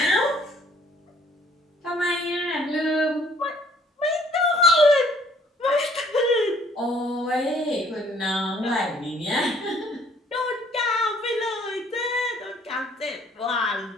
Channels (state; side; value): normal; both; correlation 0.60